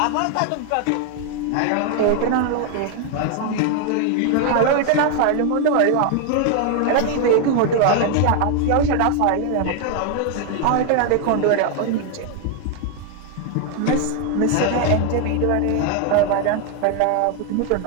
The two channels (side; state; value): both; different; correlation 0.01